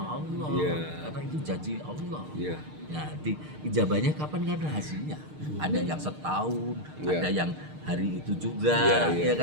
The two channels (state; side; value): late; left; 6.6 ms